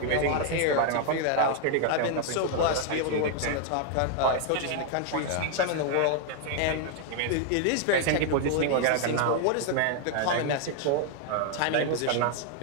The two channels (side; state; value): both; different; correlation 0.00